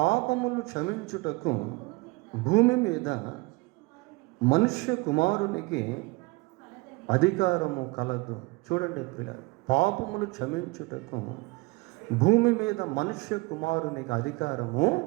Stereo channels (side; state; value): left; quieter; 25.0 dB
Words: క్షమించుటకు భూమి మీద మనుష్య కుమారునికి అధికారము కలదు. చూడండి ప్రియులారా, పాపములు క్షమించుటకు భూమి మీద మనుష్య కుమారునికి అధికారము